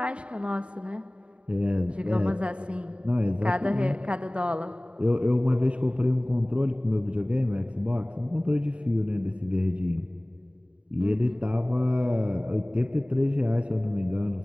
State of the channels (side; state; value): left; late; 0.058 ms